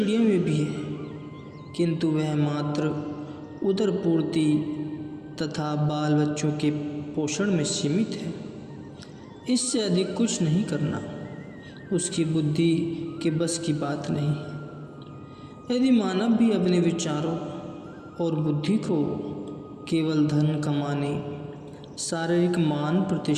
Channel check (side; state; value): both; identical; correlation 1.00